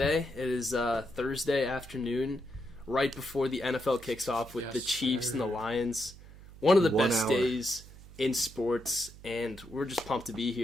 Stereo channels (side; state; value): right; noise; hum, 19 dB below the sound